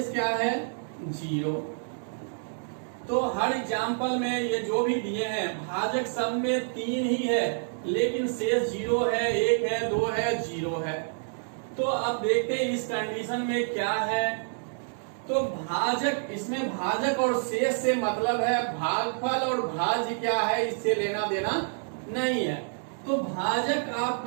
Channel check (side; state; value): left; silent; 59 dB below the other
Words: क्या है, 0। तो हर एग्जाम्पल में ये जो भी दिए हैं भाजक सब में 3 ही है, लेकिन शेष 0 है, 1 है, 2 है, 0 है। तो अब देखते हैं इस कंडीशन में क्या है। तो भाजक, इसमें भाजक और शेष से मतलब है भागफल, और भाज्य क्या है इससे लेना देना नहीं है। तो भाजक